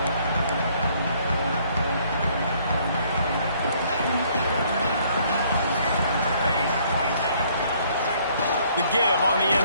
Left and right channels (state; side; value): inverted; both; correlation -0.64